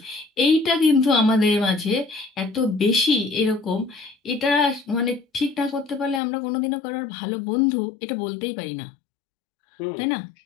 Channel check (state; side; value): drops out; right; at 6.2 s